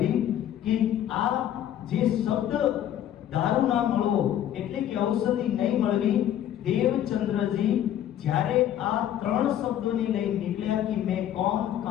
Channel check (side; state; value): right; quieter; 11.1 dB